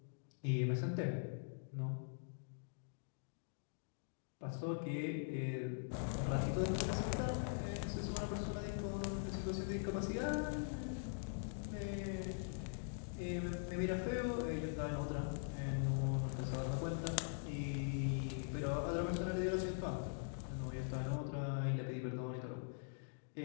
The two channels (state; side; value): silent; right; digital silence